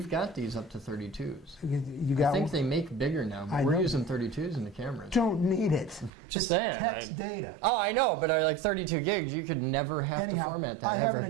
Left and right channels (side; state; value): left; drops out; at 6.1 s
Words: got these up to 32s. You got I think they make bigger now, but we're using 32s in the cameras. Don't need it. Just saying. Text data. Oh, I know, but like 32 gigs, you could never have to format that. I